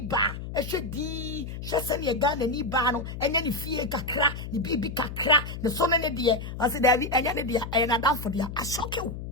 ehwedi hwese ne Ghana ni ba no enya ni fie kakra ni bibi kakra ne so ne de ase davi enya ne de ena dan for dia ashokew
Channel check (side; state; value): left; noise; hum, 8 dB below the sound